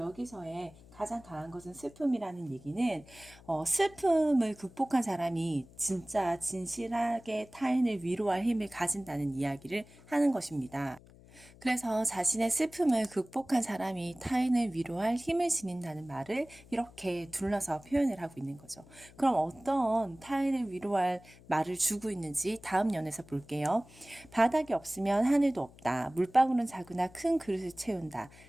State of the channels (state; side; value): noise; left; hum, 23 dB below the sound